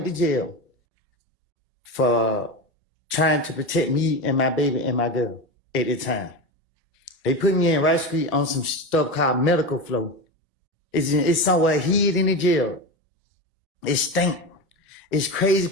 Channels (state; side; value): normal; both; correlation 0.21